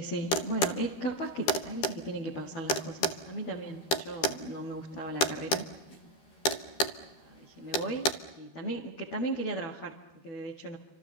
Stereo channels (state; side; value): late; right; 13 ms